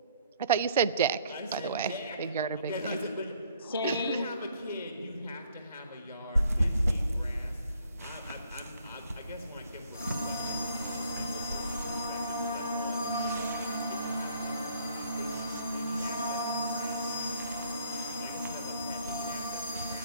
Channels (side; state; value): both; inverted; correlation -0.63